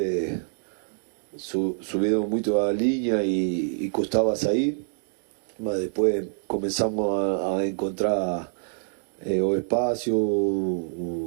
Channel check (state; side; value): silent; left; digital silence